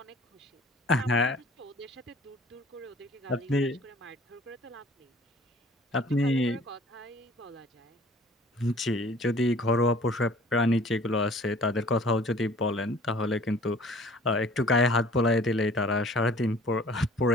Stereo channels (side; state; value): both; normal; correlation 0.51